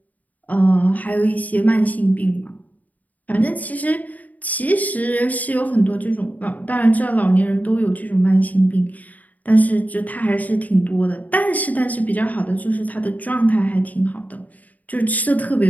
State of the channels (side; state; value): right; late; 0.076 ms